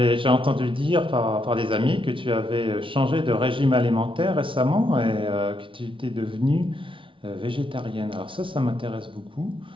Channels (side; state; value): left; late; 0.25 ms